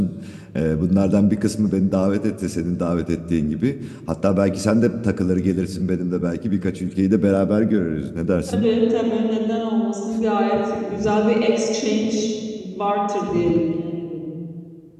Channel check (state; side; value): identical; both; correlation 1.00